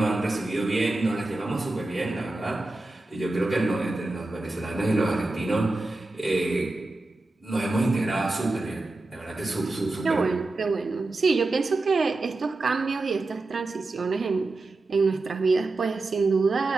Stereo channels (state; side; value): quieter; left; 3.1 dB